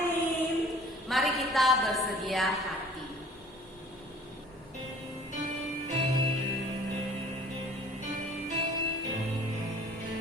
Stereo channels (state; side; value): normal; both; correlation 0.51